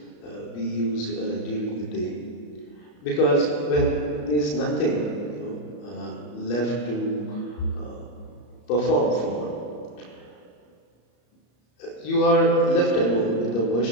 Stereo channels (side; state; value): right; late; 34 ms